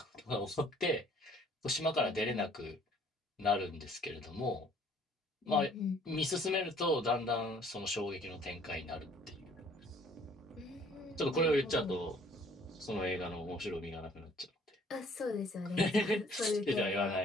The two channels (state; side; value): normal; both; correlation 0.58